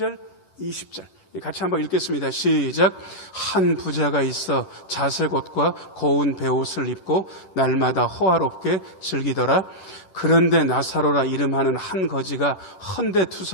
20절 같이 한번 읽겠습니다. 시작. 한 부자가 있어 자색 옷과 고운 베옷을 입고 날마다 호화롭게 즐기더라. 그런데 나사로라 이름하는 한 거지가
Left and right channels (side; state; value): right; late; 11 ms